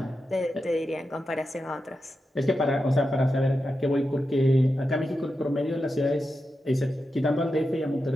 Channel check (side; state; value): both; normal; correlation 0.89